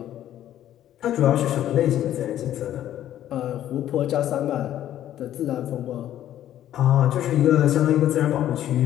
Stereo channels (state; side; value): quieter; right; 12.0 dB